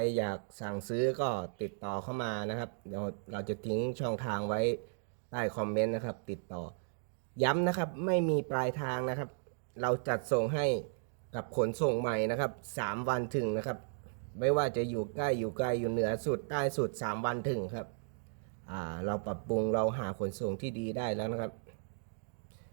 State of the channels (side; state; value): left; silent; digital silence